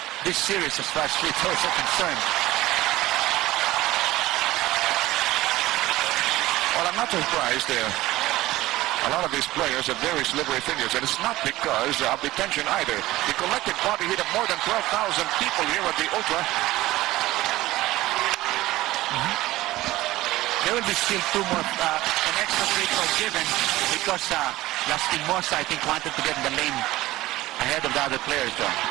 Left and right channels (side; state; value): left; quieter; 17.2 dB